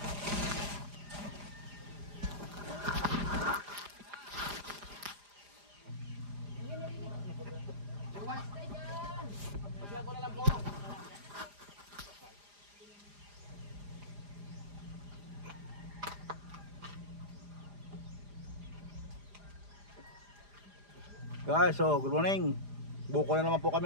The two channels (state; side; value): late; left; 4.9 ms